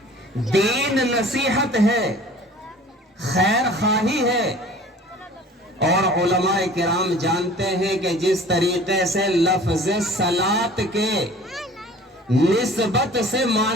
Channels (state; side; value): normal; both; correlation 0.46